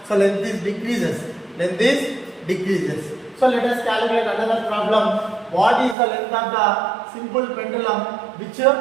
So length is decreases. Length is decreases. So let us calculate another problem. What is the length of the simple pendulum which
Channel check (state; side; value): drops out; left; at 6.0 s